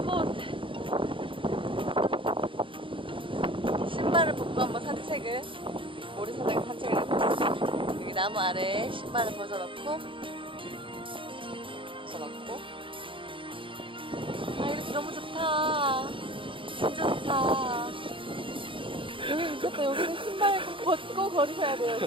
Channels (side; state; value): left; late; 0.25 ms